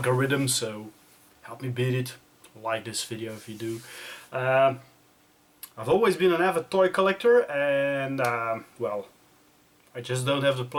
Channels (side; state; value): both; identical; correlation 1.00